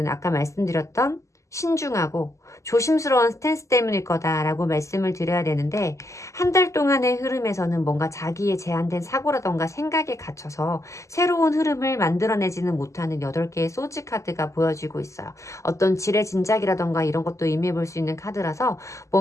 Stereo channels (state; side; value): late; right; 0.15 ms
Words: 아까 말씀드렸던 신중하고 조심스러운 스탠스 때문일 거다라고 말씀을 드려야 되는데 한 달 동안의 흐름에서는 뭔가 자기의 제한된 사고라던가 생각에 갇혀서 새로운 흐름을 만들어내지는 못하는 8개의 소지 카드가 보여지고 있어요. 어떤 지레짐작이라던가 이런 것도 의미해 볼 수 있는 카드라서